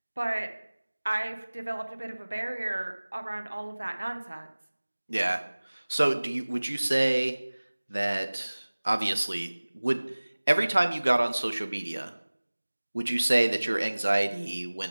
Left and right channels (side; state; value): both; inverted; correlation -1.00